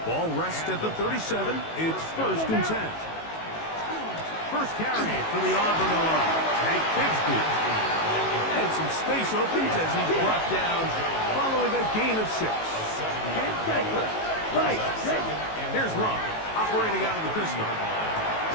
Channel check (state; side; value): late; right; 18 ms